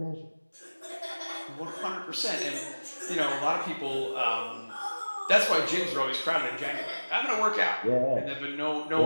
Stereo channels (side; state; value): both; inverted; correlation -1.00